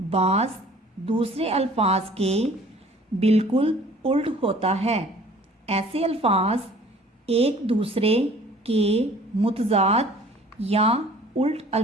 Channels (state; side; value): normal; both; correlation 0.51